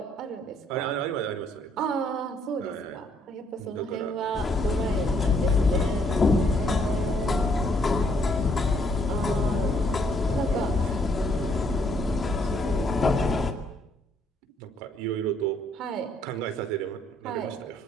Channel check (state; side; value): normal; both; correlation 0.69